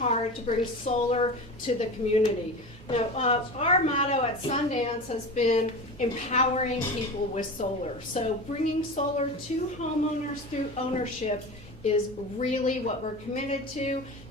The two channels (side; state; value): both; normal; correlation 0.30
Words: to bring solar to the community. Now, our motto at Sundance has been empowering people with solar. So bringing solar to homeowners through ownership is really what we're committed to,